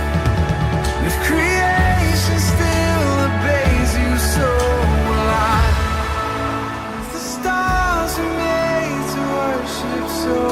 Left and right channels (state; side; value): identical; both; correlation 1.00